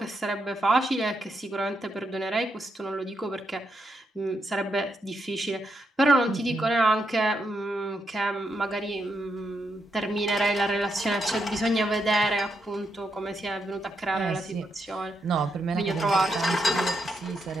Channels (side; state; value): both; normal; correlation 0.81